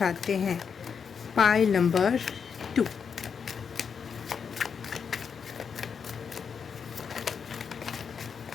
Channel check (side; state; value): right; quieter; 6.5 dB